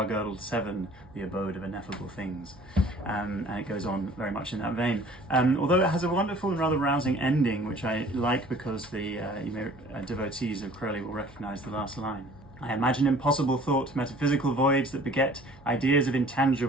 seven, the abode of ineffable things." And it goes on very much in that vein. Although it has a wonderful and rather rousing ending, which I like because the devotees of Crowley will recognise the last line. "I imagine impossible thought, metaphysical voids that beget ideas of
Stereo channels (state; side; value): noise; right; hum, 23 dB below the sound